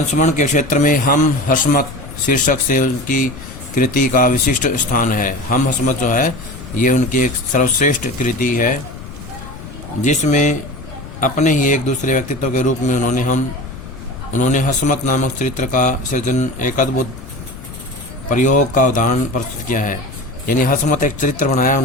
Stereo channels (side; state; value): left; noise; rumble, 14 dB below the sound